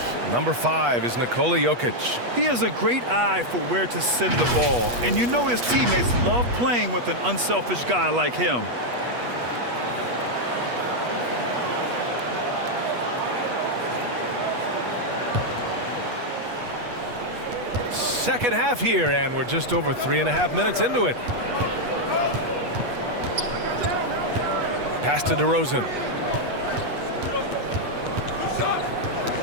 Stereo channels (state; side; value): late; left; 8.3 ms